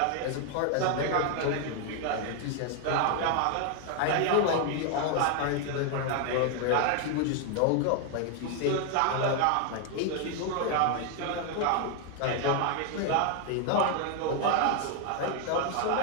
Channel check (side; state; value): both; different; correlation 0.00